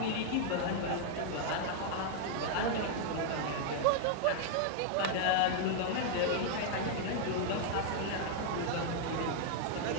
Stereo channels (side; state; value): both; different; correlation 0.00